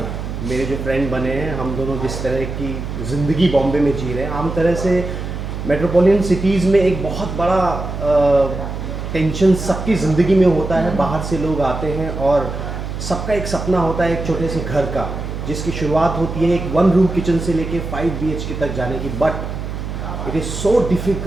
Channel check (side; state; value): right; noise; hum, 6 dB below the sound